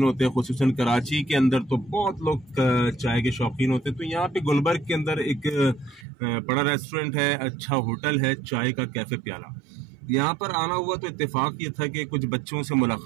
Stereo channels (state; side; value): drops out; left; at 6.1 s